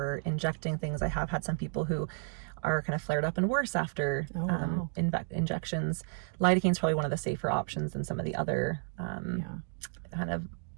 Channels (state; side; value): silent; left; 56 dB below the other